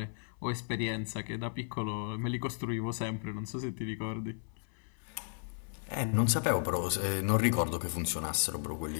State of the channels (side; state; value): right; silent; 55 dB below the other